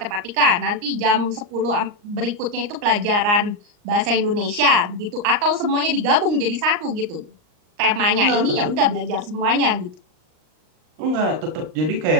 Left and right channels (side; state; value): left; late; 39 ms